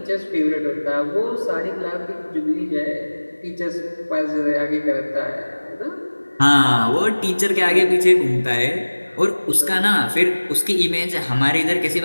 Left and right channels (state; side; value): inverted; both; correlation -1.00